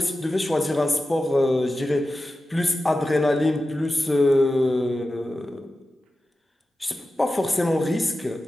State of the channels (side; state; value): both; normal; correlation 0.93